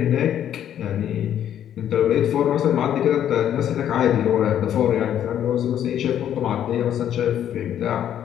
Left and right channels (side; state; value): right; quieter; 10.3 dB